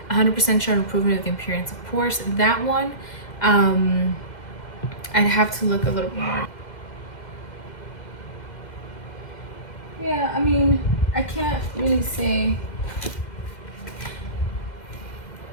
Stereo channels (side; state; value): right; late; 2.1 ms